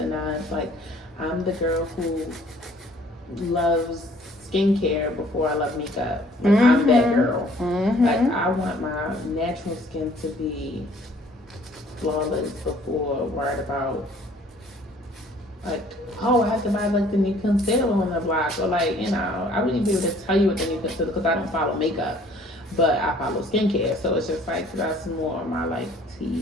nines. Like I'm the girl who loves skincare before I love makeup. Like I'm that girl. Like I want my natural skin to be flawless before worried about like, oh, I have to buy like the new concealer on the block, or like, you know, I wouldn't be able to tell you what the new concealer, because I don't follow makeup, but I follow skincare, so it's just like that's more of my like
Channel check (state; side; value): normal; both; correlation 0.57